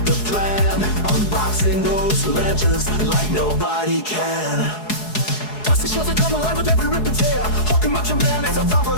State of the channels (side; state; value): right; late; 4.7 ms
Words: the plan. Unboxing those legends like nobody can. Dusty shows that come alive with every rip and tear. Hulking Macho Man is a top